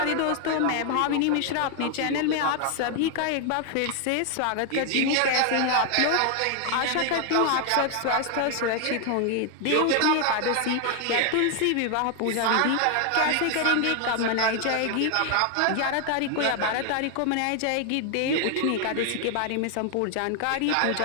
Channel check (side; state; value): both; different; correlation 0.00